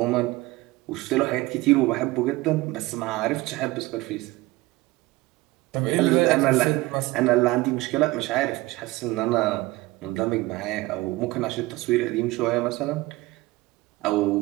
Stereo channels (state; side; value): quieter; left; 19.8 dB